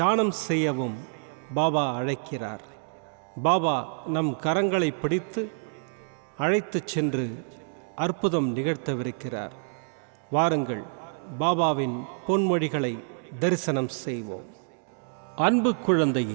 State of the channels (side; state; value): left; silent; 60 dB below the other